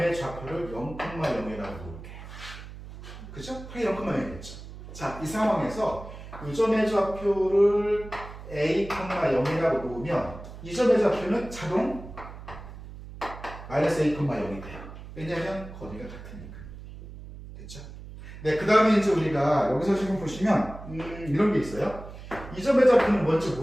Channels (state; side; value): noise; right; hum, 14 dB below the sound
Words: 좌표를 0,0이라고 놓을게요. 그죠? 파이 0,0이겠죠. 자, 이 상황에서 이 점의 좌표를 a,0이라고 놓으면 이 점의 좌표는 자동 마이너스 a,0이 돼요. 왜냐하면 거리가 같으니까. 됐죠? 네, 그 다음에 이제 우리가 여기서 지금 보시면 이런 게 있어요. 이 점의 좌표는 뭔지